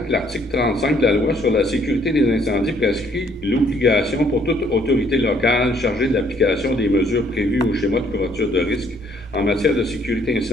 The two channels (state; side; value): normal; both; correlation 0.65